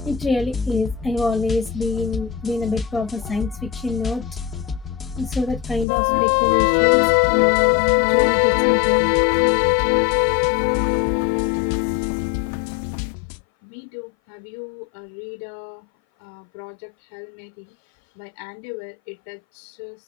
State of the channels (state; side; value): drops out; right; at 5.9 s